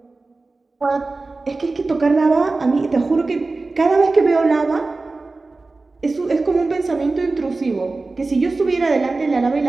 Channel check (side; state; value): left; quieter; 3.5 dB